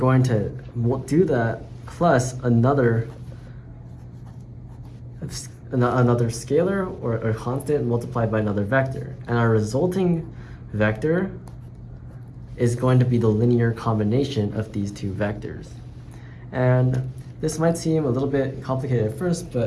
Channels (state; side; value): identical; both; correlation 1.00